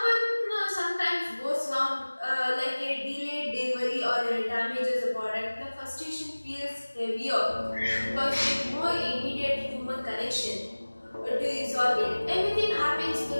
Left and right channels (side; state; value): both; inverted; correlation -1.00